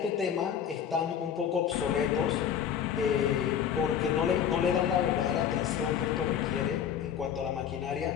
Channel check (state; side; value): quieter; right; 8.6 dB